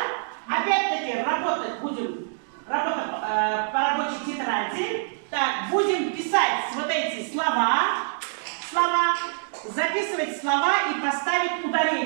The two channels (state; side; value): silent; left; digital silence